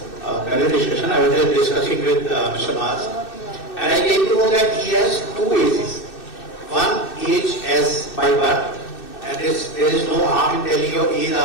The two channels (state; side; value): late; right; 2.6 ms